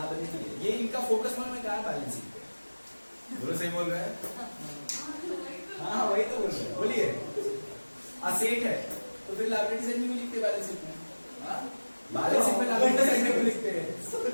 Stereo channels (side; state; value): both; inverted; correlation -1.00